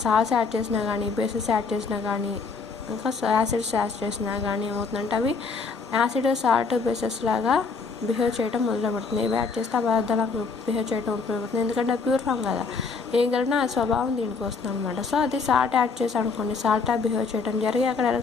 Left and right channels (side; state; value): right; quieter; 4.7 dB